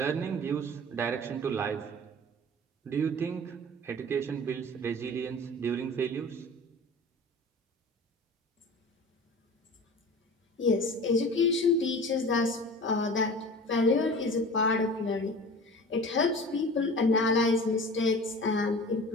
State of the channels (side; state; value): both; normal; correlation 0.39